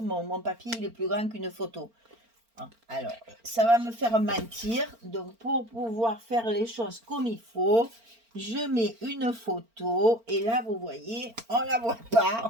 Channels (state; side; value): late; left; 4.4 ms